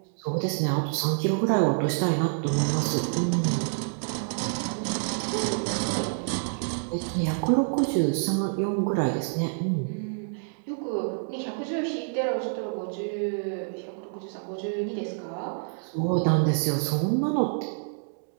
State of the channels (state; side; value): silent; left; 60 dB below the other